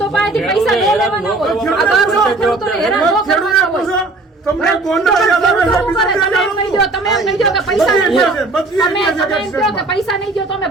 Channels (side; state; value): left; quieter; 3.2 dB